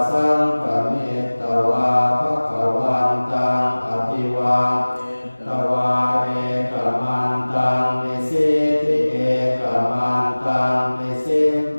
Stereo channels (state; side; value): inverted; both; correlation -1.00